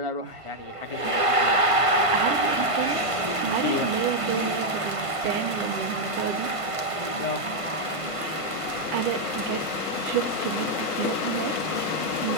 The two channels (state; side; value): late; left; 1.5 ms